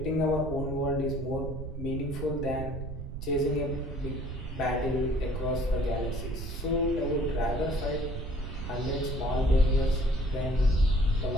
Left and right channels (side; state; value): right; noise; rumble, 6 dB below the sound